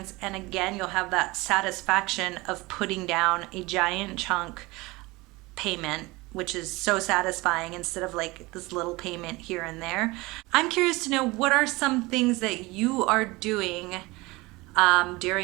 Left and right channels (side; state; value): left; quieter; 22.4 dB